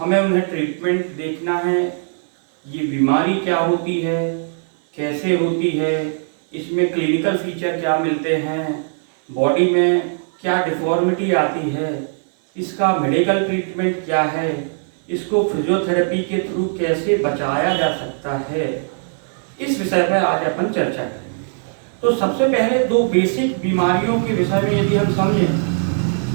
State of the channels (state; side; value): silent; left; digital silence